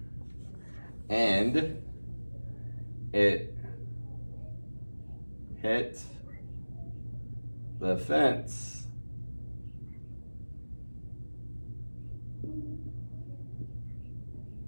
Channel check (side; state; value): both; inverted; correlation -1.00